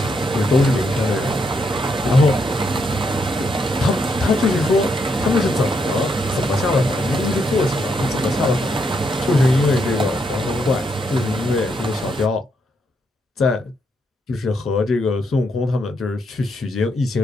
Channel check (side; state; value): both; normal; correlation 0.78